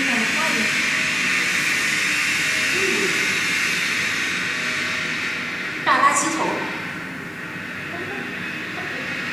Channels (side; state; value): both; normal; correlation 0.97